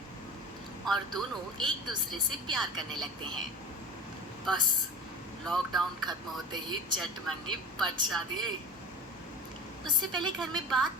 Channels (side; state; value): both; normal; correlation 0.32